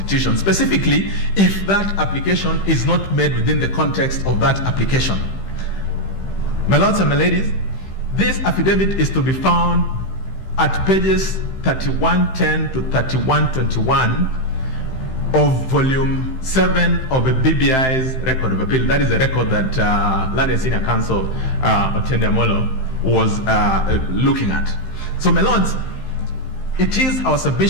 specifically if that application is not made within the context of that application. My lords and my ladies, this affidavit is to be found at pages 3110 to 3121 of volume 7 of the BBI's record of appeal. That is the record that Learned Senior Counsel Otiende Amolo was looking at. So, my lords, it is our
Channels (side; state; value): right; late; 15 ms